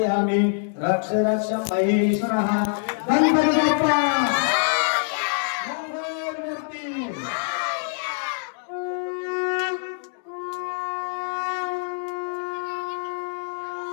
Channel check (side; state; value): right; silent; digital silence